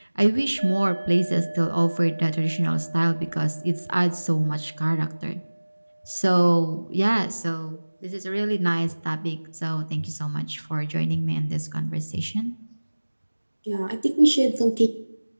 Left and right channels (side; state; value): both; inverted; correlation -1.00